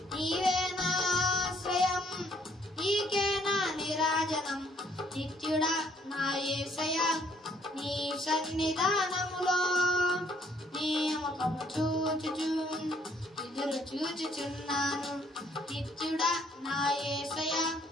నీవే నా ఆశ్రయం, నీకే నా నీరాజనం. నిత్యుడా నా యేసయ్యా నీ సన్నిధానములో నీ ముఖము చూచుచు ఎదురు చూచుచున్నాను. నిత్యుడా నా యేసయ్యా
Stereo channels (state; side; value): normal; both; correlation 0.66